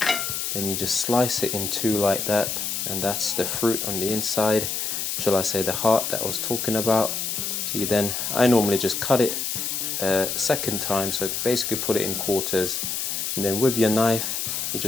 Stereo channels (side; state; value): left; noise; hiss, 2 dB below the sound